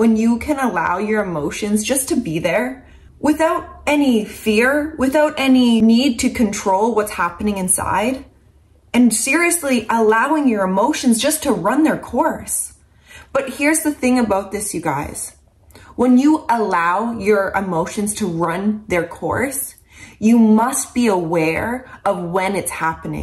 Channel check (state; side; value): identical; both; correlation 1.00